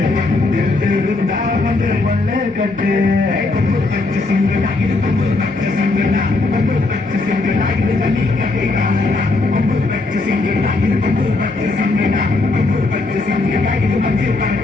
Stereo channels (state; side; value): quieter; right; 3.3 dB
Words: வந்து கொள்ளை கட்டு கொம்பு பச்சை சிங்கடா இது கொம்பு பச்சை சிங்கடா கொம்பு பச்சை சிங்கடா இது தண்ணி கட்டிடா கொம்பு பச்சை சிங்கடா இது கொம்பு பச்சை சிங்கடா கொம்பு பச்சை சிங்கடா இது மஞ்சள்